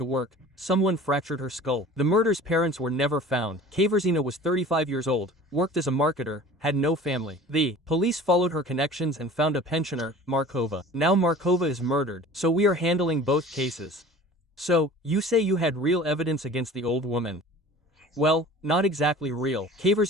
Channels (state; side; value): normal; both; correlation 0.43